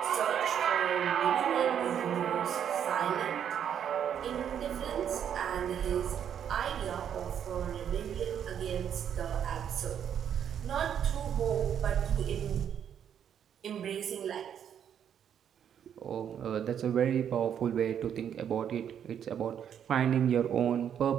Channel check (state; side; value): quieter; left; 8.9 dB